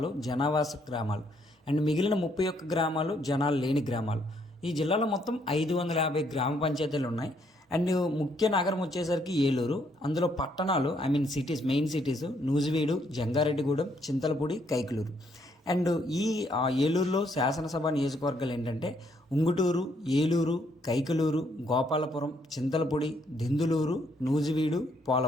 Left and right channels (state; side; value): normal; both; correlation 0.71